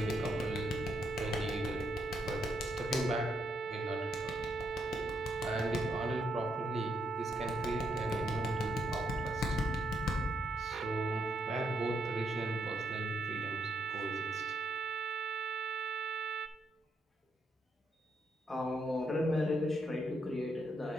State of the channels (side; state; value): both; normal; correlation 0.78